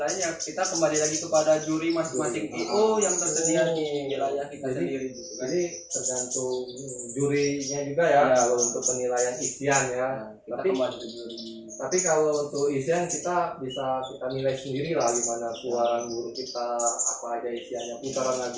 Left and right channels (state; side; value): identical; both; correlation 1.00